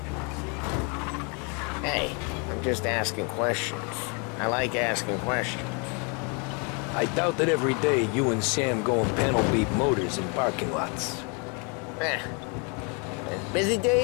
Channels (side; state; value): right; quieter; 34.8 dB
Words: Hey, I'm just asking questions. I like asking questions. I doubt that every day you and Sam go and panel beat motors in parking lots. There's busy